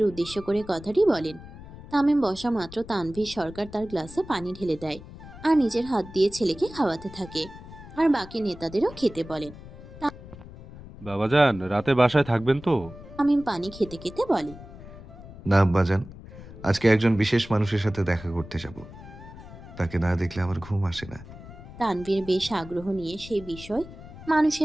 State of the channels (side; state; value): left; noise; rumble, 16 dB below the sound